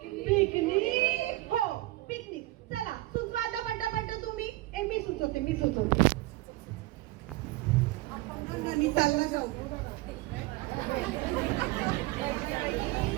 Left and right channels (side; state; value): left; quieter; 18.7 dB